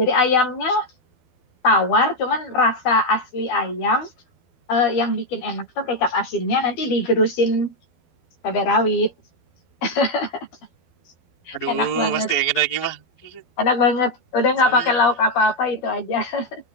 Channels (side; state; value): right; late; 12 ms